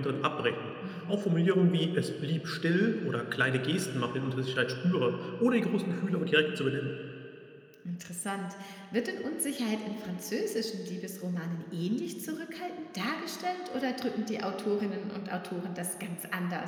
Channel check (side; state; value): both; identical; correlation 1.00